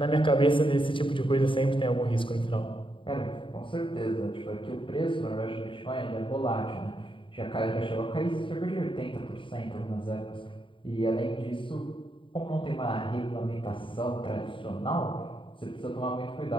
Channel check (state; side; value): late; right; 0.25 ms